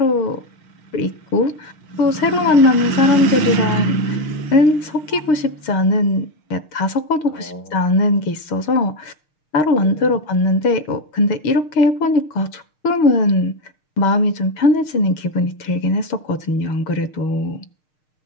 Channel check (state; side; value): late; right; 6.5 ms